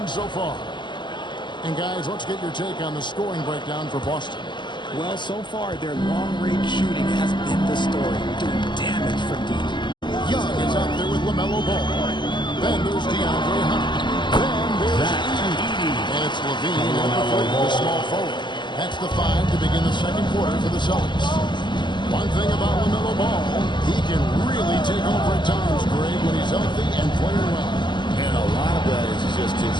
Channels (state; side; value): late; right; 0.22 ms